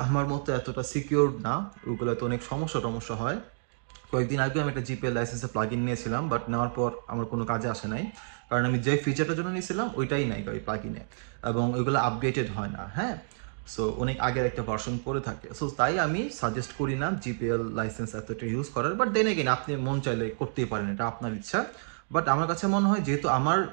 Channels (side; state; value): left; silent; digital silence